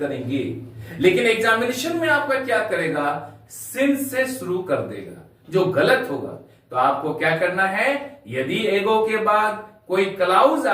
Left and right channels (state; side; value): identical; both; correlation 1.00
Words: लेकिन एग्जामिनेशन में आपका क्या करेगा? सिंस से शुरू कर देगा, जो गलत होगा। तो आपको क्या करना है? यदि एगो के बाद कोई क्लाउज